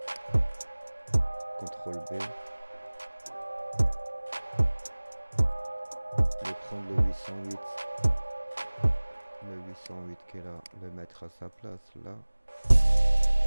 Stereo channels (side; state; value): both; inverted; correlation -1.00